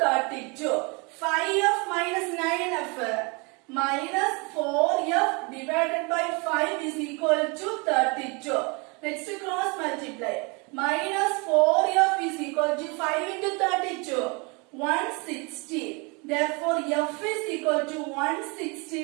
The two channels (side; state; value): left; quieter; 30.2 dB